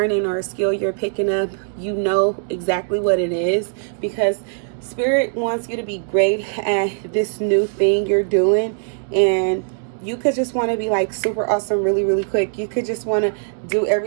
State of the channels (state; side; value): silent; left; digital silence